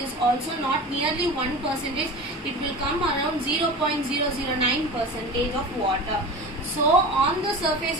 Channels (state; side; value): normal; both; correlation 0.32